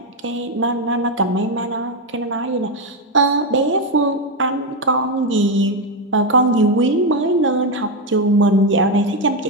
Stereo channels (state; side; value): normal; both; correlation 0.07